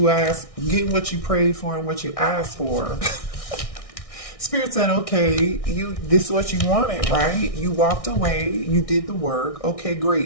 asked, getting what you prayed for and what you asked for. Spirit said, okay, this is what you wanted, right? You walked away, you did the work. Okay,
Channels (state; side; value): late; right; 1.6 ms